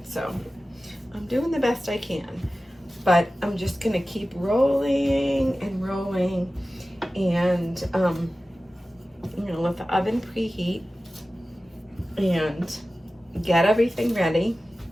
so I'm doing the best I can. But I'm just gonna keep rolling and rolling, and I'm gonna let the oven preheat and get everything ready.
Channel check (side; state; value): both; normal; correlation 0.95